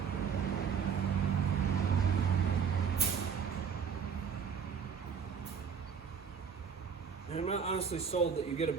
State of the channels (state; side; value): quieter; left; 6.8 dB